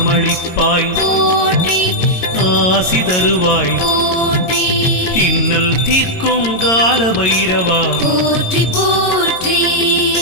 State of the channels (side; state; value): right; late; 22 ms